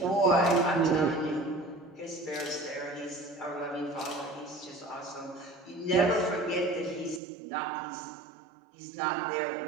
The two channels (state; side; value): drops out; left; at 7.2 s